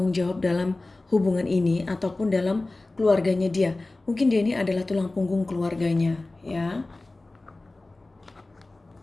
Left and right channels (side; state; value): right; quieter; 3.0 dB